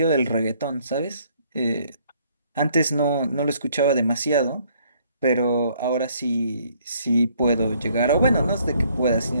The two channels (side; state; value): both; inverted; correlation -0.64